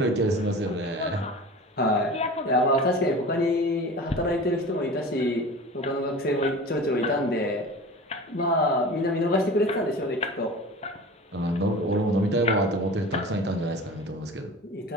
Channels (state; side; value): normal; both; correlation 0.36